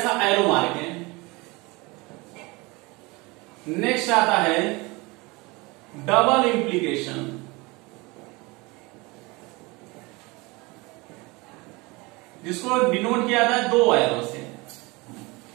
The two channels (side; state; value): left; quieter; 24.9 dB